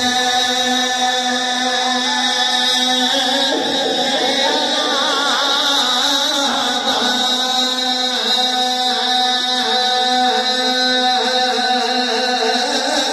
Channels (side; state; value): both; identical; correlation 1.00